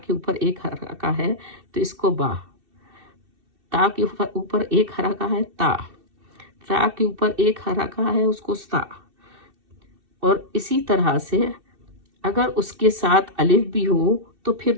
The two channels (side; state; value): left; late; 2.7 ms